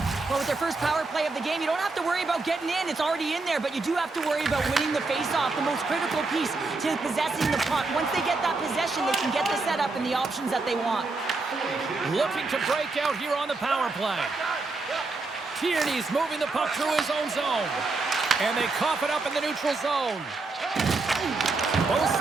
Well, with their first power play of the game, you don't have to worry about getting in. It's already in there, but you do have to worry about winning the face-off, the most critical piece to possessing the puck. Once they get that possession, they can get the setup and the options that they want. Looking to break out here on the power play. Tierney's moving the puck through his own zone. And they cough it up in the neutral zone. Both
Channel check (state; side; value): quieter; left; 3.6 dB